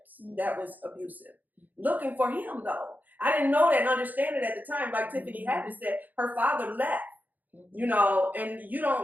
that was abusive. Looking for him though. I didn't know that and understand it at the time. Like Tiffany had said, her father left. You know, and you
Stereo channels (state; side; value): late; left; 0.083 ms